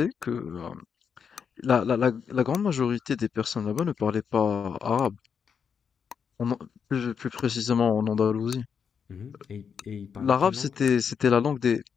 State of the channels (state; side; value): quieter; right; 6.8 dB